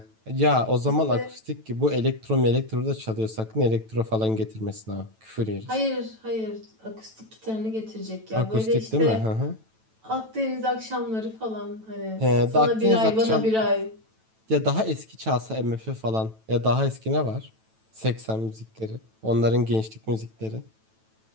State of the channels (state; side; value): late; left; 9.1 ms